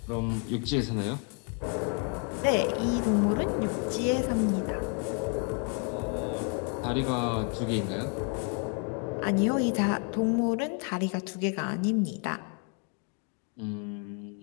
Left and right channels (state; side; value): quieter; right; 38.2 dB